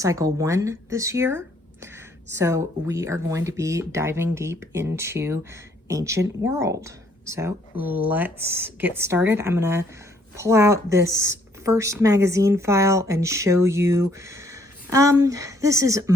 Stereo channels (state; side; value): normal; both; correlation 0.66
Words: 1 this year. So we are going to be diving deep into ancient world. So let's get started. I'm gonna pull out this first magazine file and show you, this is